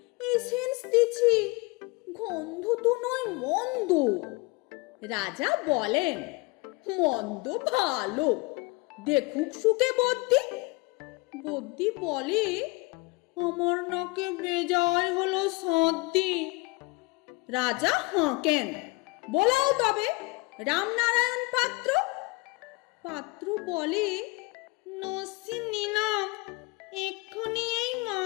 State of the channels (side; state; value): right; quieter; 25.2 dB